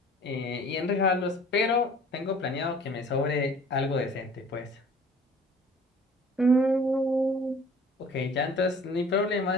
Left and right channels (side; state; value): both; normal; correlation 0.49